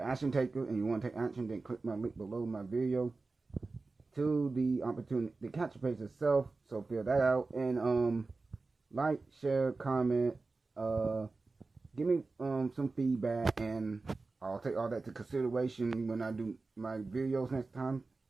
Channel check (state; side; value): quieter; left; 3.8 dB